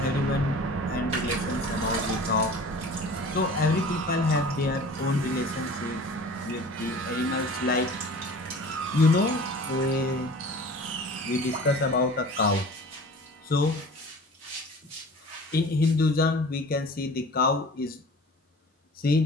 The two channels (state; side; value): normal; both; correlation 0.42